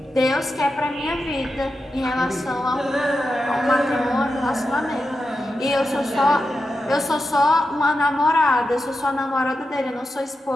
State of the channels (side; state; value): both; normal; correlation 0.89